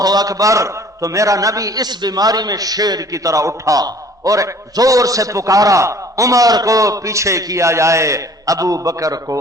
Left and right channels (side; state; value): both; normal; correlation 0.52